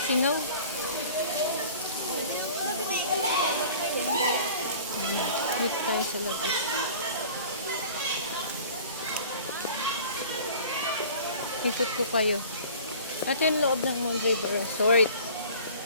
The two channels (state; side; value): inverted; both; correlation -0.45